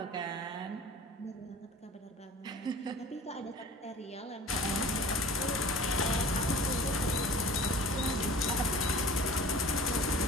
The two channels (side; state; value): both; normal; correlation 0.42